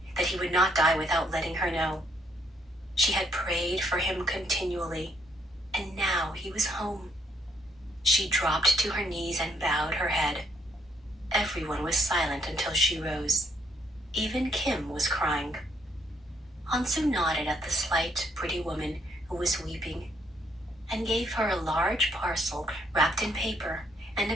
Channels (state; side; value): normal; both; correlation 0.70